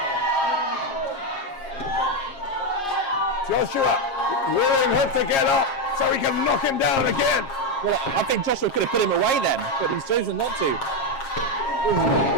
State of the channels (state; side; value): late; right; 7.4 ms